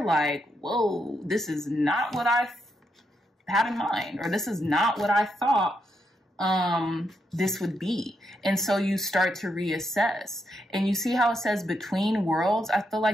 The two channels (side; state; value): both; normal; correlation 0.80